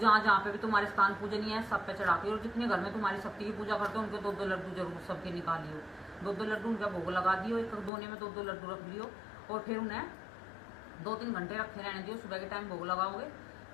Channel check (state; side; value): drops out; right; at 7.9 s